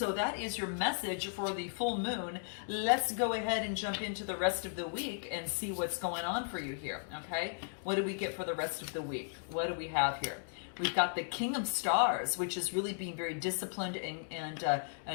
that is your message for the full moon. Let's go ahead and jump into the rest of the week and see what's going on for you here, okay? What do we get for the rest of the week? What do we have here? We've got the King of Stars, which is really being very disciplined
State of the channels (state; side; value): silent; right; digital silence